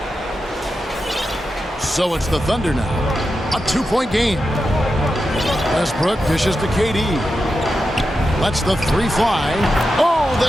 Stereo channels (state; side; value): normal; both; correlation 0.89